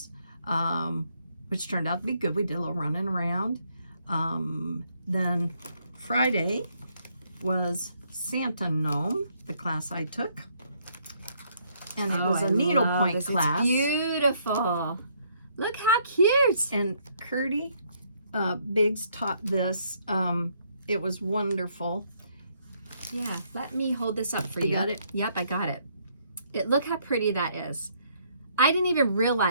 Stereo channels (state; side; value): inverted; both; correlation -0.70